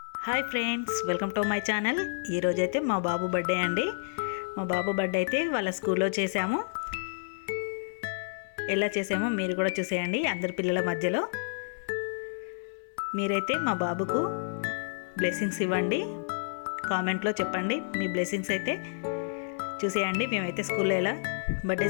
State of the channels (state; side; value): silent; right; digital silence